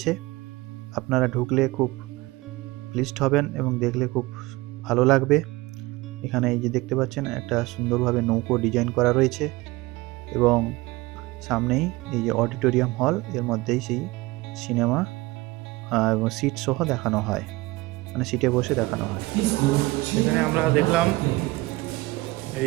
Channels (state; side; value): quieter; left; 21.1 dB